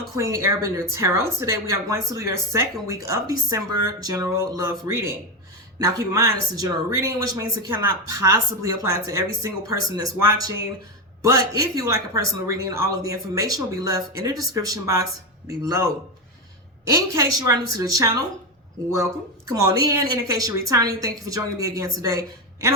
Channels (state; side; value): normal; both; correlation 0.12